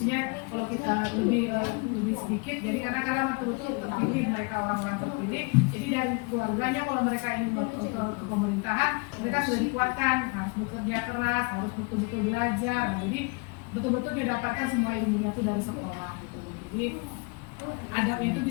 kalau kita lebih sedikit. Jadi karena betul-betul terpilih mereka, orang-orang terpilih. Jadi dari keluarganya kalau mereka ingin ke pemerintahan, mereka sudah dikuatkan, harus bekerja keras, harus betul-betul belajar. Nah, jadi betul-betul dia dapatkan semua ilmunya itu dari sekolah gitu. Jadi adabnya itu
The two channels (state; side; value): quieter; right; 31.1 dB